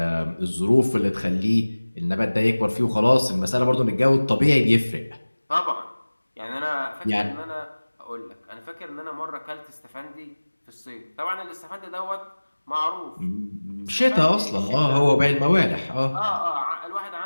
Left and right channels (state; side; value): inverted; both; correlation -1.00